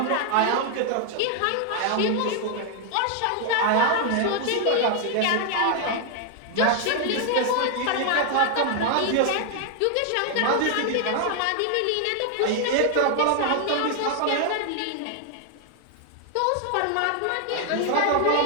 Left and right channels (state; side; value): different; both; correlation 0.00